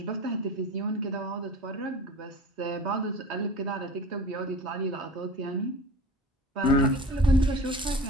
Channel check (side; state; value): both; normal; correlation 0.39